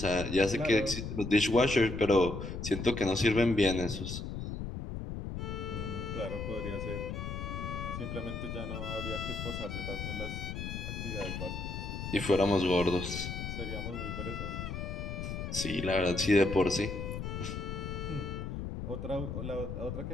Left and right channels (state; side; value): noise; left; rumble, 5 dB below the sound